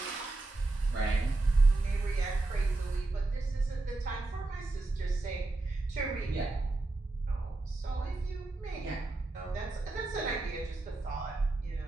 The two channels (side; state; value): left; quieter; 3.1 dB